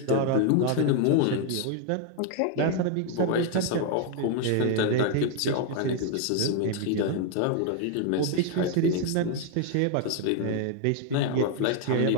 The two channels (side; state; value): both; different; correlation 0.00